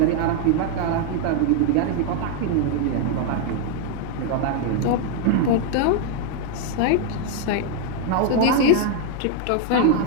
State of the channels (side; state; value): both; different; correlation 0.00